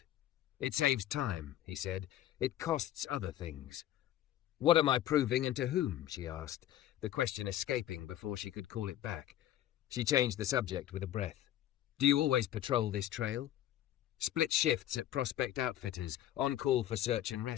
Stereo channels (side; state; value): right; quieter; 12.6 dB